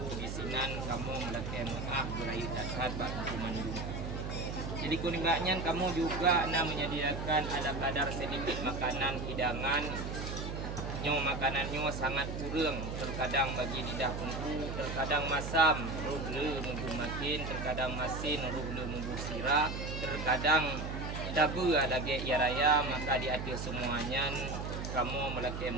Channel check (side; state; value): right; noise; hum, 5 dB below the sound